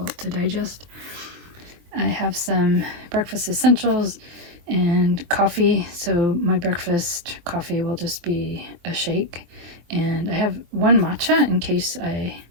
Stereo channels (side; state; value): left; late; 23 ms